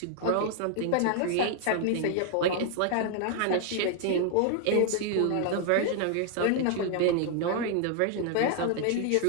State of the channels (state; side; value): different; both; correlation 0.00